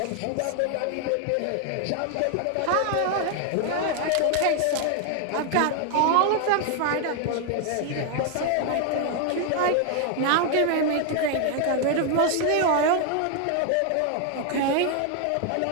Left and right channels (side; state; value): both; different; correlation 0.00